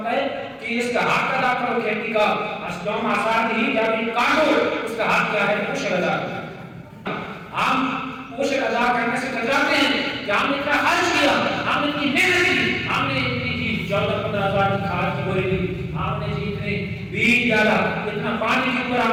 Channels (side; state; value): both; identical; correlation 1.00